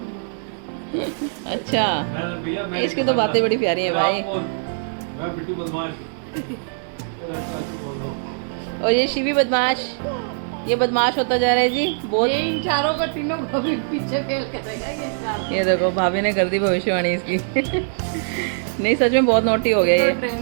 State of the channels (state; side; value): silent; left; digital silence